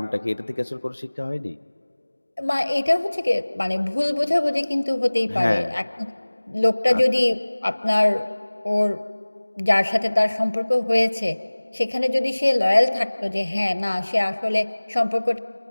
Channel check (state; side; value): inverted; both; correlation -1.00